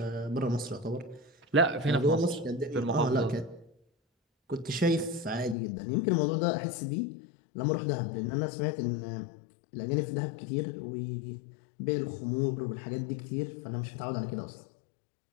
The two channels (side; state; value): right; drops out; at 5.6 s